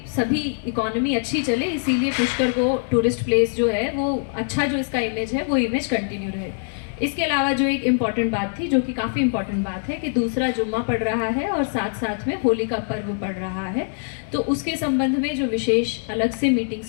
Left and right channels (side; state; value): right; silent; digital silence